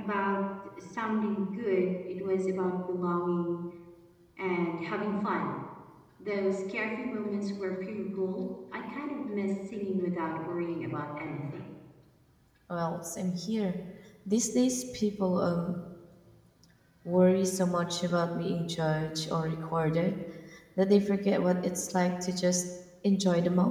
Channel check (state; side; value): identical; both; correlation 1.00